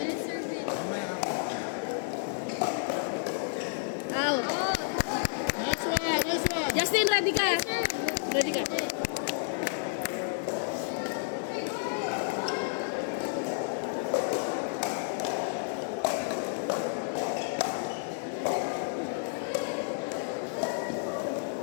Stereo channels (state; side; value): silent; right; digital silence